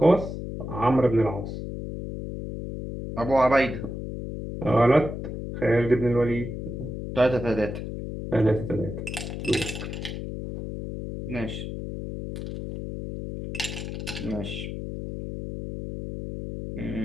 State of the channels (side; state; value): left; noise; hum, 6 dB below the sound